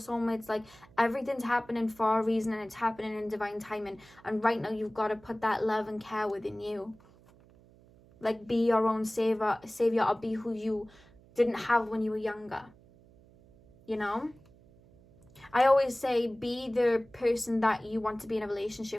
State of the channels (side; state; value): right; noise; hum, 26 dB below the sound